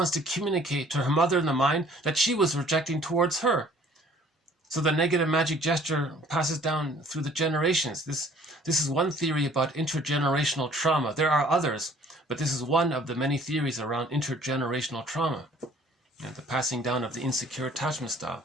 to communicate to her mother in the mind that she was rejecting towards her. So the negative magic gesture passes down through the generations. This is one theory about intergenerational trauma. There are others, but this is one of the many theories around intergenerational trauma. And the passing down of the insecure attachment style,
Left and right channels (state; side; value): normal; both; correlation 0.56